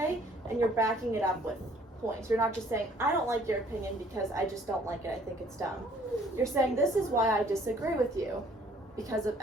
and you're backing it up with points. You're not just saying, I don't like your opinion because I just don't like it, I think it's dumb. You're saying, this is why I disagree with you. Because of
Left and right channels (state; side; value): normal; both; correlation 0.59